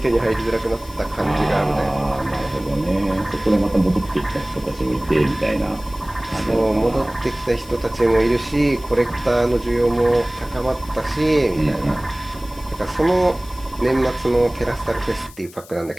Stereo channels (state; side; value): noise; left; hiss, 21 dB below the sound